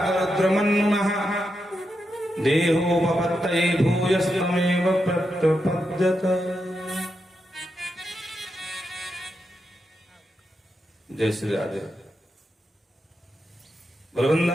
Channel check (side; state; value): both; normal; correlation 0.85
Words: देहो पपत्तये भूयस्तमेव प्रत्यपद्यत। जय श्री राधे।